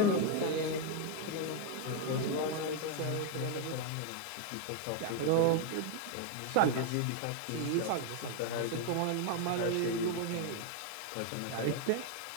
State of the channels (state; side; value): different; both; correlation 0.01